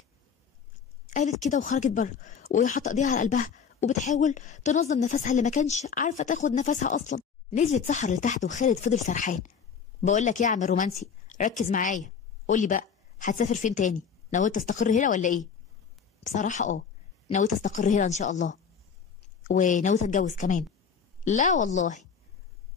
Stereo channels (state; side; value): quieter; right; 6.6 dB